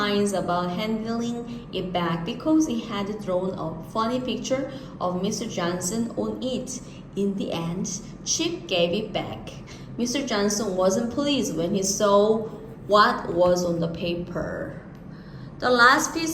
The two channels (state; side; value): identical; both; correlation 1.00